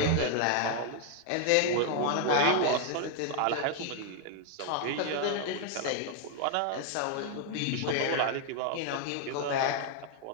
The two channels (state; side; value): different; both; correlation 0.00